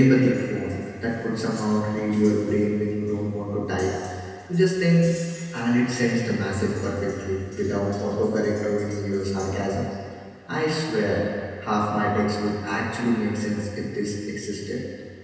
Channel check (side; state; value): both; identical; correlation 1.00